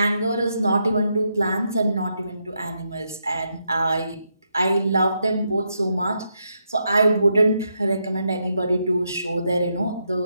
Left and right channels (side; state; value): both; inverted; correlation -0.81